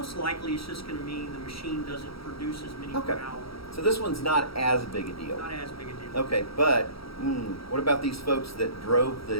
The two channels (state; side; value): late; right; 0.75 ms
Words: likely it's just going to mean the machine doesn't produce as many per hour. So this one's not as big a deal. Not as big a deal. Okay, but what about these folks that drove